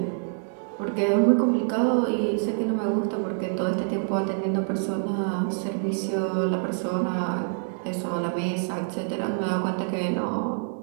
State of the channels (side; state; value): left; silent; digital silence